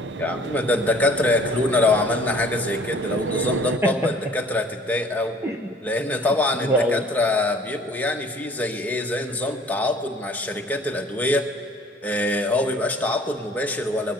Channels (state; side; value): normal; both; correlation 0.52